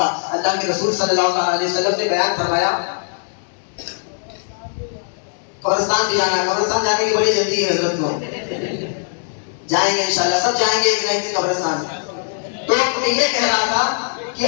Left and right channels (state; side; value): silent; right; 61 dB below the other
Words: اللہ کے رسول صلی اللہ علیہ وسلم نے بیان فرمایا قبرستان بھی جانا ہے. قبرستان جانے کی بڑی جلدی ہے حضرت کو، جائیں گے انشاءاللہ، سب جائیں گے ایک نہ ایک قبرستان. تو میں یہ کہہ رہا تھا کہ